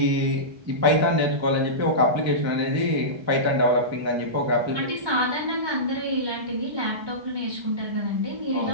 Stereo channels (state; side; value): late; left; 1.3 ms